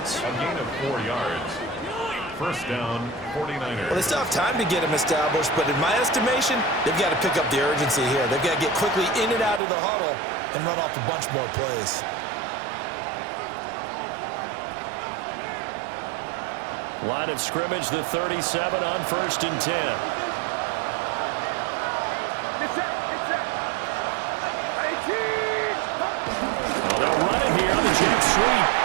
A gain of 4 yards. First down, 49ers. Well, they still have time to get him established, but in my estimation, they've got to pick up the urgency here. They've got to get quickly in and out of the huddle and run off a bunch more plays. Line of scrimmage, the 37 on 1st and 10. Oh, they'll run it here on the jet sweep.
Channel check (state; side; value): drops out; left; at 9.6 s